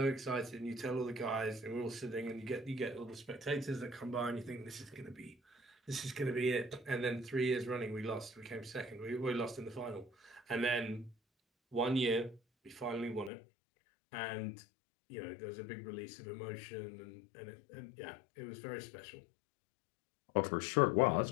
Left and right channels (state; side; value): drops out; right; at 13.3 s